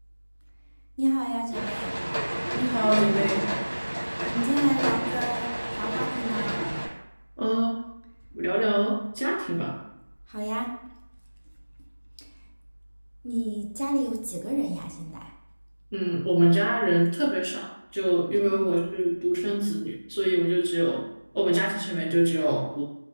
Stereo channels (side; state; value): both; inverted; correlation -1.00